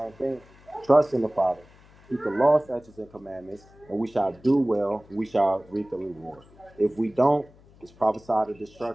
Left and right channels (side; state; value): left; noise; hum, 26 dB below the sound